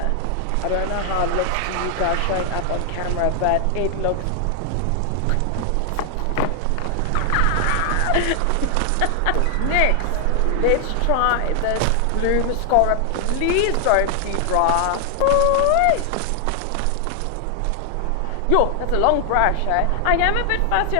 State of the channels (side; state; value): both; different; correlation 0.00